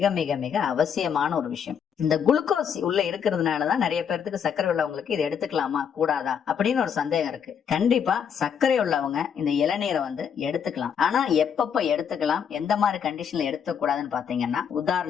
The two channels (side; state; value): right; quieter; 7.6 dB